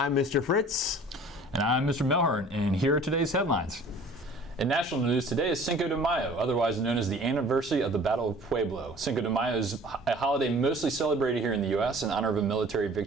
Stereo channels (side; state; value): both; normal; correlation 0.48